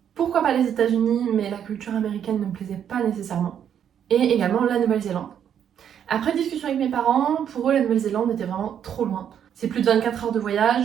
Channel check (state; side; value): quieter; left; 9.0 dB